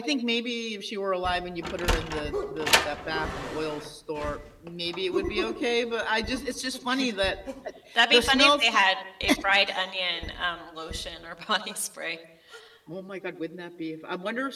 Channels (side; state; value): both; identical; correlation 1.00